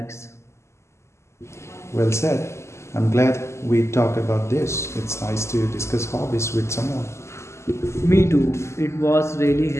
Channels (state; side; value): late; right; 0.13 ms